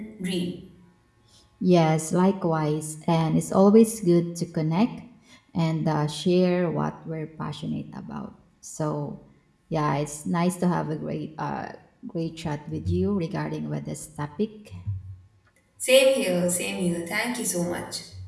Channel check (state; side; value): identical; both; correlation 1.00